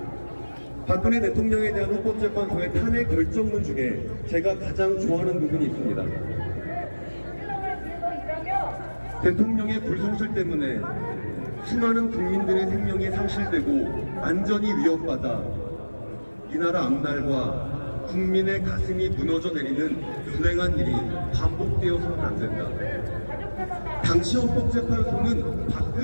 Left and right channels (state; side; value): inverted; both; correlation -1.00